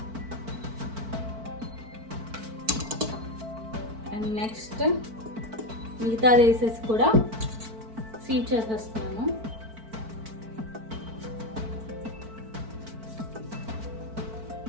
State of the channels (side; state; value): left; late; 4.5 ms